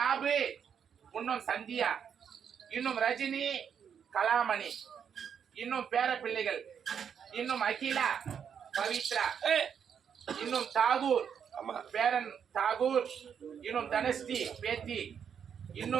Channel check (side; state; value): left; quieter; 7.7 dB